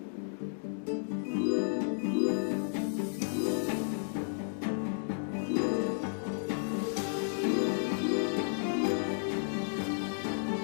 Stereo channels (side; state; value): right; silent; digital silence